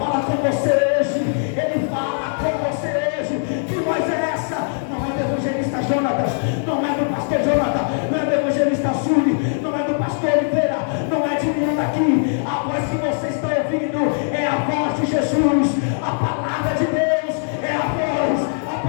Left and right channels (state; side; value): silent; right; 65 dB below the other